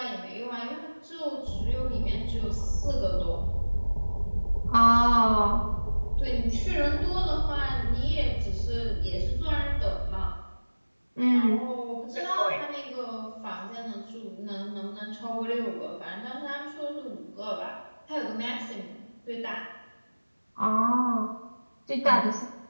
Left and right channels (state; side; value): inverted; both; correlation -1.00